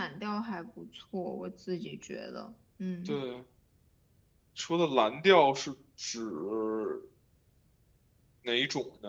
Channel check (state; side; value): identical; both; correlation 1.00